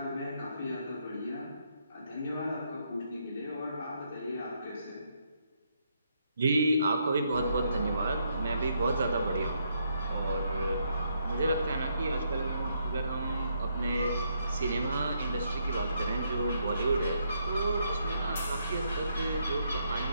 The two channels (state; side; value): inverted; both; correlation -0.76